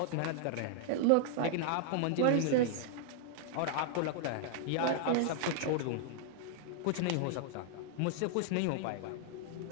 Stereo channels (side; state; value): both; different; correlation -0.01